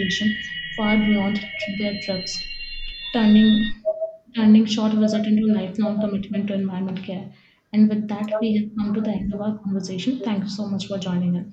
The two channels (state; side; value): identical; both; correlation 1.00